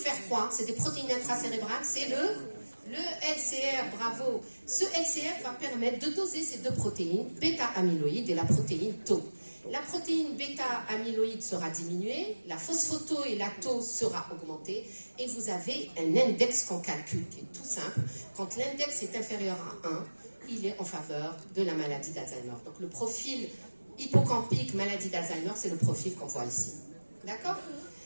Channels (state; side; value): inverted; both; correlation -1.00